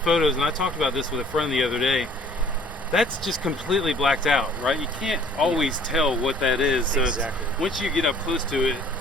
photos, and I talked about this with a friend the other day, that's just completely blacked out, right? You can't always tell what that is. So exactly. Once you get up close to it,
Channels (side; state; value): both; normal; correlation 0.54